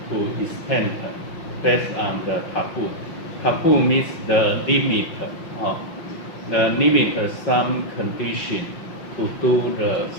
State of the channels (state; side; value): late; right; 5.4 ms